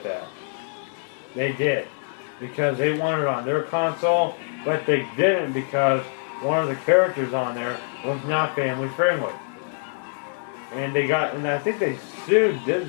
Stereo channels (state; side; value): silent; right; digital silence